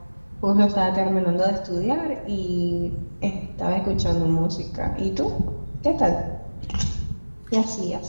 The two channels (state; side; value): inverted; both; correlation -1.00